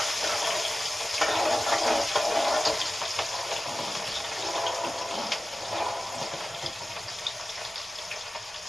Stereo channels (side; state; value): both; normal; correlation 0.95